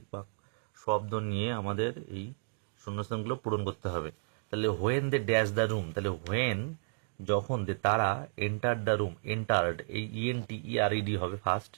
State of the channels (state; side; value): silent; left; digital silence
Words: শব্দ নিয়ে আমাদের এই শূন্যস্থানগুলো পূরণ করতে হবে। তাহলে when they dash the room, তাহলে হোয়েন যখন, দে তারা, এন্টার দ্য রুম, এন্টার্ড, এই ENTERED হবে ফার্স্ট।